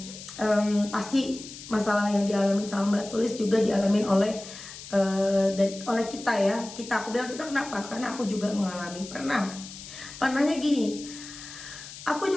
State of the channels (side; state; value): left; noise; hiss, 14 dB below the sound